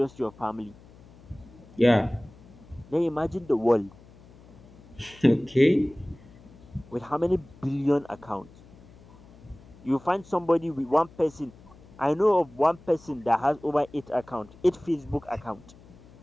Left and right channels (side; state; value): left; noise; hum, 23 dB below the sound